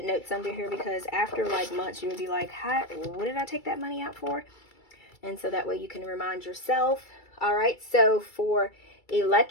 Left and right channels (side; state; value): right; late; 2.3 ms